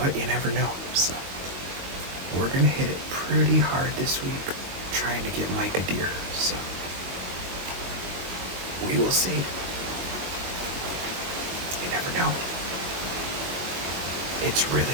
you never know. So we're gonna hit it pretty hard this week, trying to get Mike a deer. So we will see. You never know. It's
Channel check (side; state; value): left; late; 22 ms